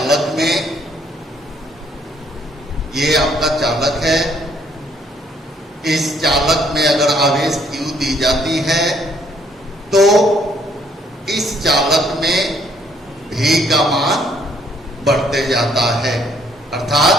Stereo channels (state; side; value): normal; both; correlation 0.66